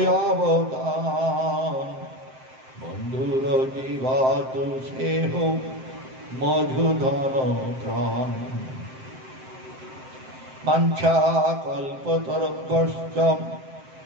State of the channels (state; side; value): late; left; 7.6 ms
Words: অবদান বন্ধুর জীবাতু সেহ মধুধন প্রাণ। বাঞ্ছা কল্পতরুভ্যশ্চ